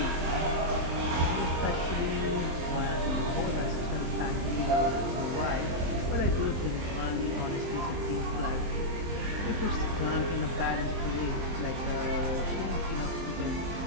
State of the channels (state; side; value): late; left; 23 ms